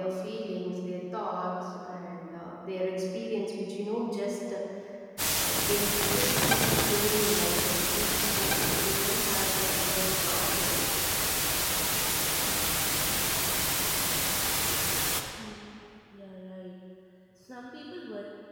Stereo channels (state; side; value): identical; both; correlation 1.00